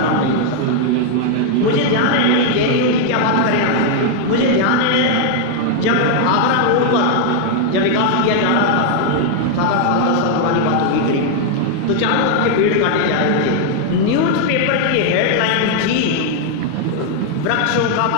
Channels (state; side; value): different; both; correlation 0.00